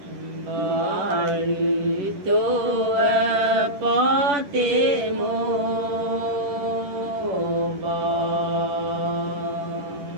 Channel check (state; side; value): late; left; 10 ms